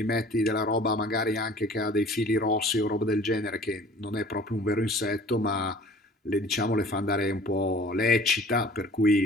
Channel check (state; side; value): normal; both; correlation 0.48